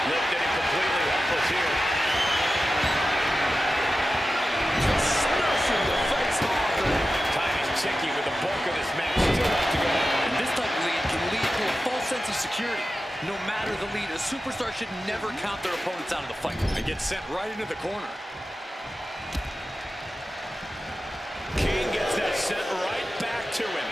Lifted him completely helpless here. Just smashing the face hard there. Time is ticking with the bulk of this match still left to go. And this type of lead can lead to a false sense of security. No matter the lead, a superstar should never count their opponents out of the fight. And get sent right into the corner. King gets that sent right back to him.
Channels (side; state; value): both; normal; correlation 0.93